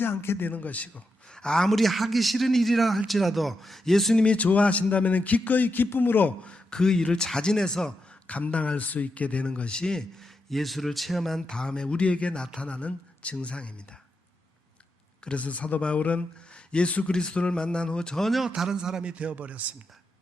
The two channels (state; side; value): normal; both; correlation 0.85